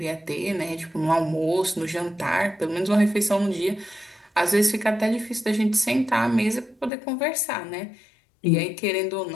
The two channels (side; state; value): right; drops out; at 6.9 s